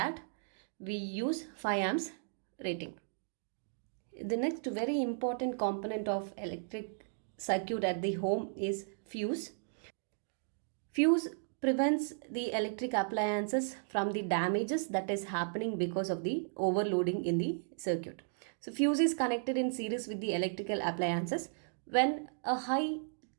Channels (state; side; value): silent; left; digital silence